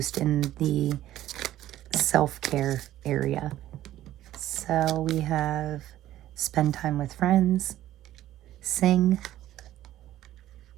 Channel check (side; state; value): left; quieter; 13.6 dB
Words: in the self-care area. So we have spend time with friends, sing,